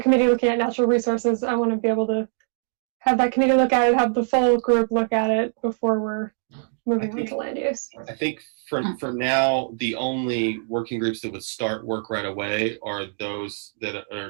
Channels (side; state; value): left; silent; 63 dB below the other